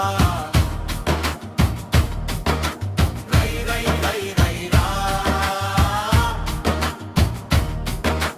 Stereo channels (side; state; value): both; identical; correlation 1.00